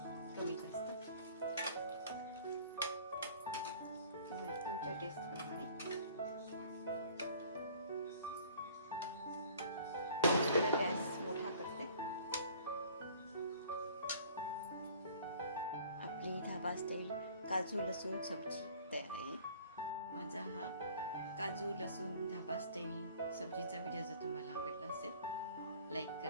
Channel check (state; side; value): inverted; both; correlation -0.51